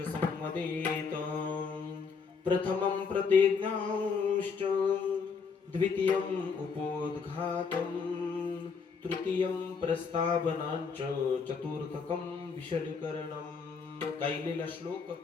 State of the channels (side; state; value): right; quieter; 5.4 dB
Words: संवदेत. प्रथमं प्रतिज्ञांश्च द्वितीयं उपोद्घातं तृतीयं प्रस्तावनांच चतुर्थकं विशलीकरणं. गायलेला श्लोक